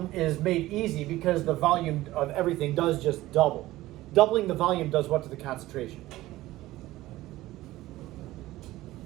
is made easy because the volume of everything does just double, doubling the volume does what to the concentration?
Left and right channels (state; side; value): quieter; left; 16.8 dB